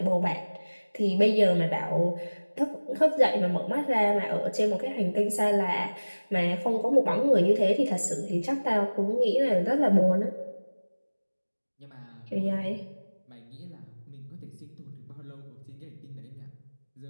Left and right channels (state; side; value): inverted; both; correlation -1.00